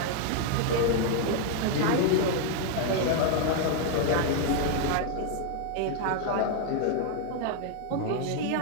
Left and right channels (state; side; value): different; both; correlation 0.00